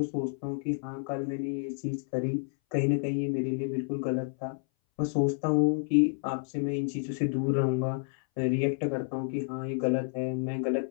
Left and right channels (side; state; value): right; silent; 58 dB below the other